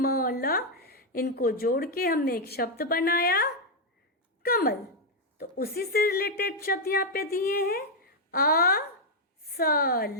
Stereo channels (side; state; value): both; normal; correlation 0.00